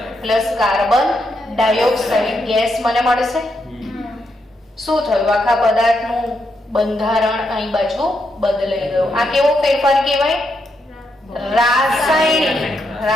plus carbon dioxide gas મને મળશે. શું થયું? આખા પદાર્થનું બંધારણ અહીં બાજુ બદલાઈ ગયું. આ કેવો ફેરફાર કહેવાય?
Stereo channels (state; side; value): normal; both; correlation 0.81